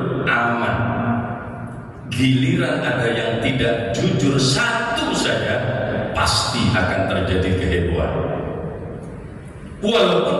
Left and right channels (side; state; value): both; identical; correlation 1.00